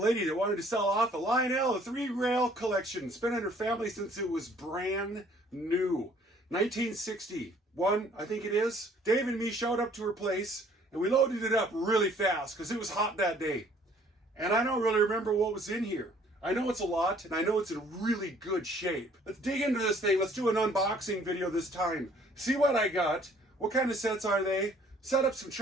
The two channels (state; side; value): normal; both; correlation 0.59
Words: that wanted to sell off a Lionel, a 3-rail collection. It's been in her family since it was brand new. 1961, I think it is. Dave and me showed up to her place and we loaded it up really fast because it was hot that day. And I don't really remember what was in here. I know it's a lot and I know it's in really good shape. Let's dig into this thing. Let's do an unboxing video this time. See what I got. What kind of sets are they? Set up some